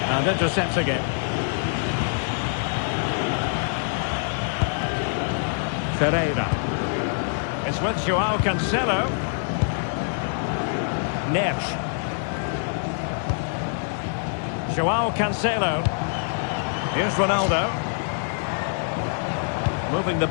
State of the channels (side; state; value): right; silent; 62 dB below the other